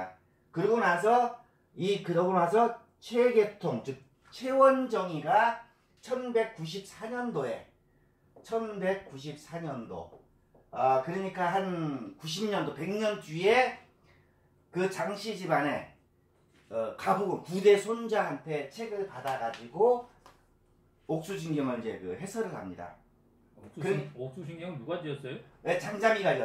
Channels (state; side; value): identical; both; correlation 1.00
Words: 그러고 나서 최계통 즉 최원정이가 1194년도에 그러니까 한 90년도 100년 뒤에 그 장씨 집안의 가부군 9대 손자한테 책을 받아가지고 옥수진경을 이제 그 해설을 합니다. 옥수진경은 누가 지었어요? 네, 장자미가